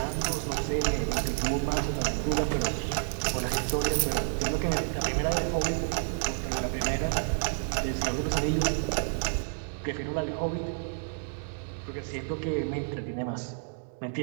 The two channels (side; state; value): left; silent; digital silence